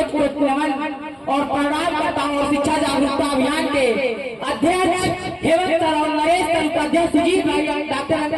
कोट नमन और प्रणाम करता हूँ। और शिक्षा जागरूकता अभियान के अध्यक्ष हेमंत सर और नरेश सर, उपाध्यक्ष सुजीत भाई, डॉक्टर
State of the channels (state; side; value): identical; both; correlation 1.00